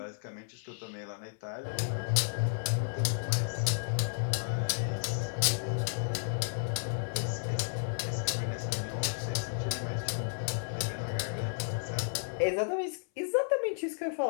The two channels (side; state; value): right; silent; 56 dB below the other